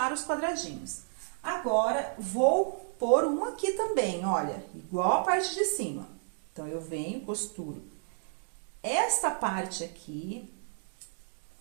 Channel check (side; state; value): left; silent; digital silence